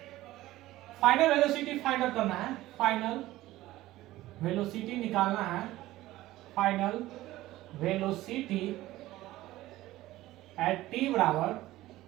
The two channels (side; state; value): left; quieter; 16.5 dB